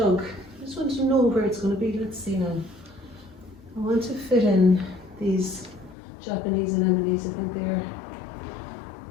I just want to know where it's going to be. Let's see now. I want to fit in these Japanese anemones. I think they're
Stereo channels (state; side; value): drops out; right; at 6.0 s